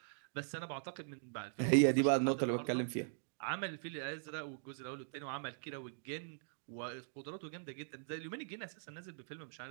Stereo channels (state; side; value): silent; left; digital silence